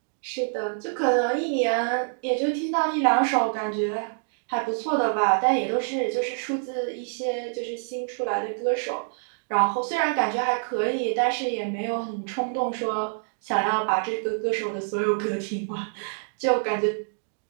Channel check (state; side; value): silent; left; digital silence